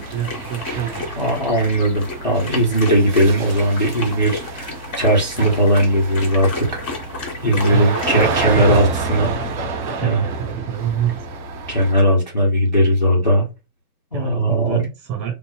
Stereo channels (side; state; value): both; inverted; correlation -0.46